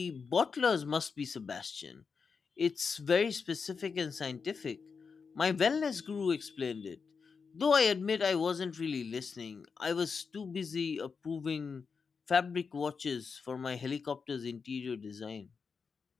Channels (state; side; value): quieter; right; 5.4 dB